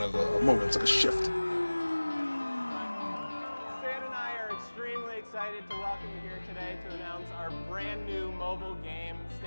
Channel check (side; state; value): both; inverted; correlation -1.00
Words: of a moment. It's like a shift. mobile game